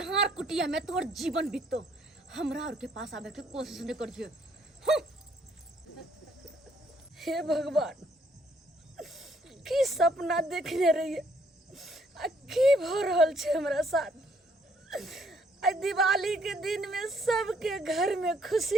कुटिया में तोहर जीवन बीतो। हमरा और के पास आवे के कोशिश नहीं करिए। हे भगवान, की सपना देखने रहिए आ की भ रहल छे हमरा साथ। आ दिवाली के दिन में सबके घर में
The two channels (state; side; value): normal; both; correlation 0.67